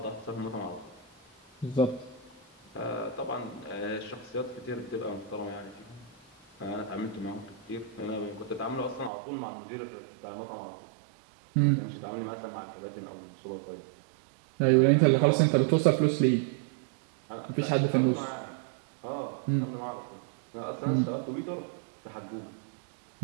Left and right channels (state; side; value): drops out; left; at 9.1 s